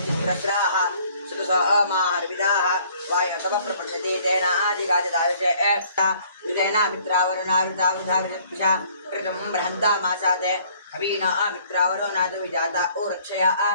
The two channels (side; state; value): both; inverted; correlation -0.59